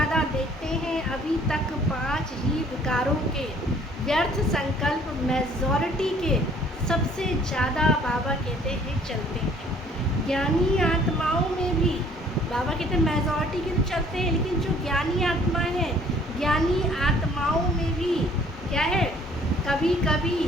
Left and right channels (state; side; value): normal; both; correlation 0.57